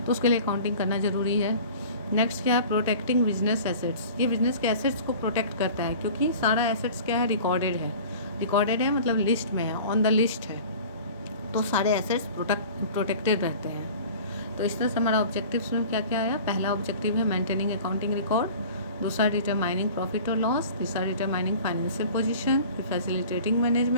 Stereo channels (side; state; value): both; inverted; correlation -0.43